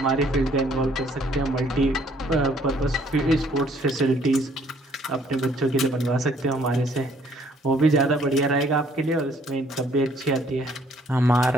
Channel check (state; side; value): normal; both; correlation 0.62